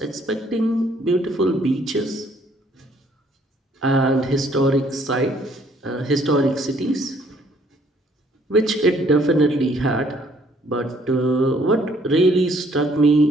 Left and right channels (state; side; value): normal; both; correlation 0.63